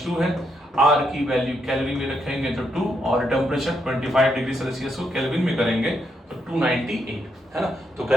है, आर की वैल्यू केल्विन में रखेंगे तो 2, और टेम्परेचर 25 डिग्री सेल्सियस को केल्विन में करेंगे तो 298, है ना, तो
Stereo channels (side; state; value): both; normal; correlation 0.79